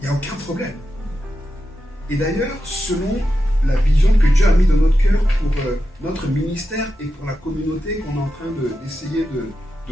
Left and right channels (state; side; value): normal; both; correlation 0.89